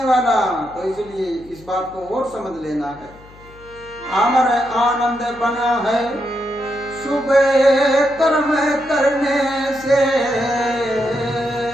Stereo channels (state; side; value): noise; left; hum, 23 dB below the sound